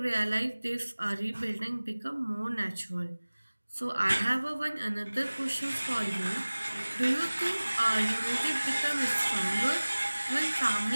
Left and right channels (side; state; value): both; inverted; correlation -1.00